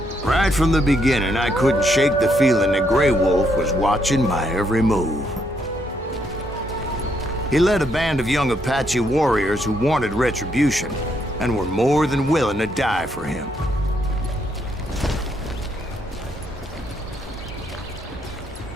Right from the beginning, I couldn't shake the feeling that Grey Wolf was watching my every move. He led a band of young Apache warriors who wanted retribution and were more than willing to die for him.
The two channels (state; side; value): normal; both; correlation 0.75